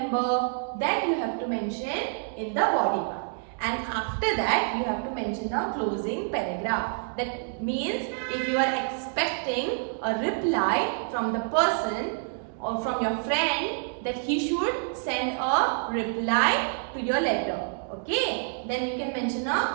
that you have to mention in the body part. And after that, you have to mention a closing paragraph. That means if you are expecting a reply from the person or from your friend, that he should send a reply to your letter. Okay, then you can mention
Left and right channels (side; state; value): left; silent; 60 dB below the other